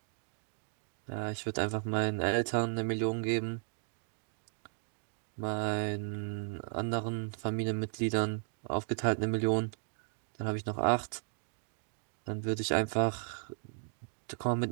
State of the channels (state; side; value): silent; left; 54 dB below the other